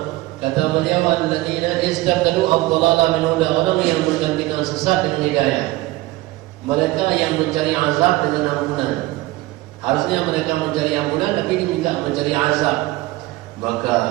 Kata beliau, alladzina istabdalu ad-dhalala min huda, orang yang menggantikan sesat dengan hidayah. Mereka yang mencari azab dengan ampunan. Harusnya mereka mencari ampunan, tapi diminta mencari azab. Maka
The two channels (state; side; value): quieter; left; 19.1 dB